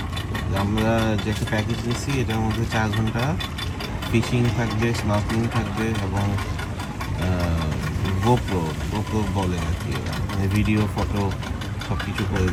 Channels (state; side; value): identical; both; correlation 1.00